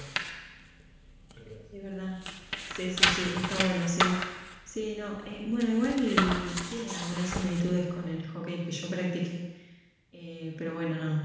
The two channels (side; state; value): both; identical; correlation 1.00